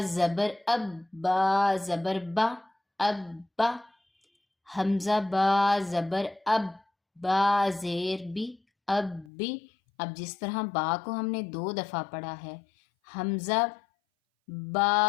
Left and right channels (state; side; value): drops out; right; at 9.3 s